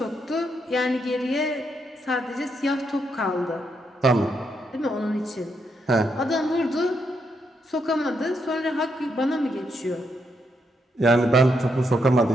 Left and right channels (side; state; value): both; normal; correlation 0.79